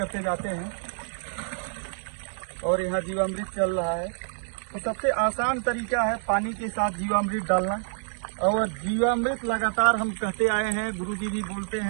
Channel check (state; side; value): silent; left; digital silence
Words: जाते हैं और यहाँ जीवामृत चल रहा है। तो सबसे आसान तरीका है पानी के साथ जीवामृत डालना। और जीवामृत लगातार हम कहते आए हैं, गुरुजी भी बोलते